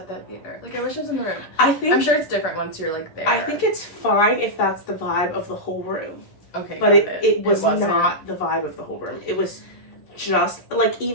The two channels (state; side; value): late; right; 11 ms